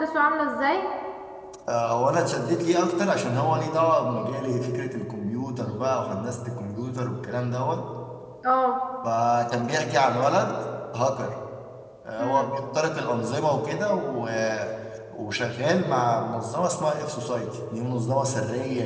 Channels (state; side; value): identical; both; correlation 1.00